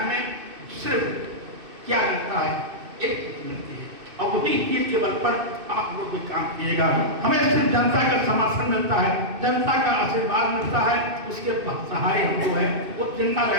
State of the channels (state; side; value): late; left; 2.6 ms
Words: सिर्फ क्या मिलता है, एक चीज मिलती है, और वही चीज के बल पर आप लोग भी काम किएगा। हमें सिर्फ जनता का समर्थन मिलता है, जनता का आशीर्वाद मिलता है, उसके सहारे हम जो है वो जिंदा